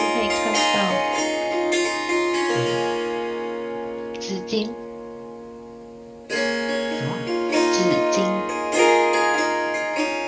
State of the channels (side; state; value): both; identical; correlation 1.00